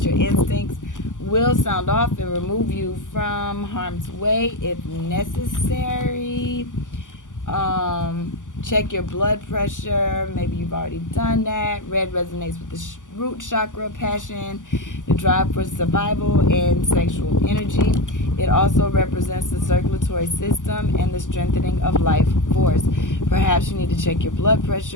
your instincts will sound off and remove you from harm's way if necessary. Check your blood pressure. Maybe you've already done that. Red resonates with the root chakra, passion, the drive for survival, and sexual energy. It also represents the circulatory system and the strengthening of life force. Perhaps you need to check your blood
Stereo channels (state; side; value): late; right; 0.87 ms